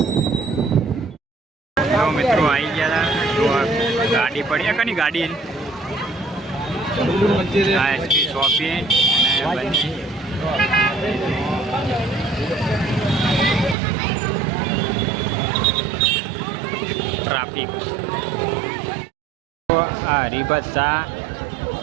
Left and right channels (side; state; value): left; drops out; at 13.8 s